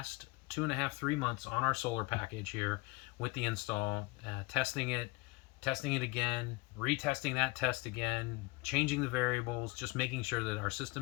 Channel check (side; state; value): right; quieter; 23.8 dB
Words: 2.5, 3 months on our solar package here with the install, testing it again, retesting that test again, changing the variables, just making sure that our